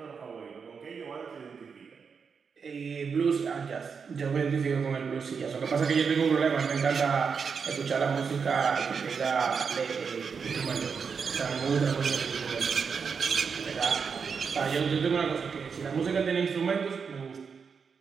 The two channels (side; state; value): left; quieter; 5.9 dB